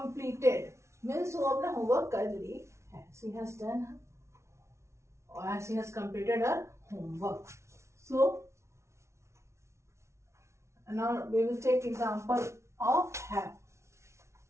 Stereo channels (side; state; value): left; late; 0.13 ms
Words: means वो अपना homework कर ली है. She has done or she has completed her homework. So now we will take example of have.